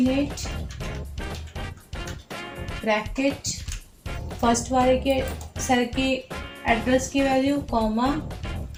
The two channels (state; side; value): identical; both; correlation 1.00